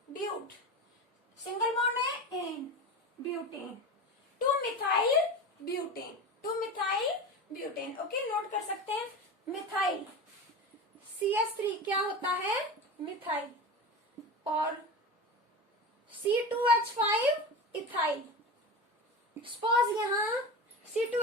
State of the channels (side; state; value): both; normal; correlation 0.27